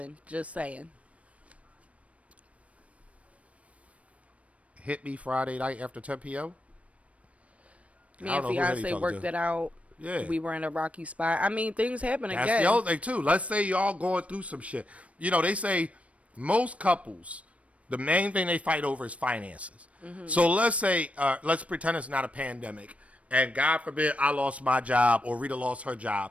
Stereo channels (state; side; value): late; left; 0.064 ms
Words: Just saying. Hit me Friday night after 10 p.m. Me and fiance worked it out. Yeah. We were in a rocky spot. I mean, things happen again. That's the other thing, too. Let's say y'all going through some shit. You know, they say most couples, the main thing they fight over is finances. Mm-hmm. So let's say, let's pretend it's not a pandemic. And God forbid I lost my job or Rita lost her